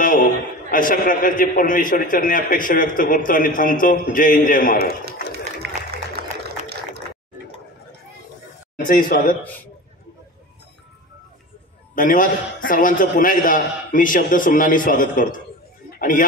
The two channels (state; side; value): normal; both; correlation 0.33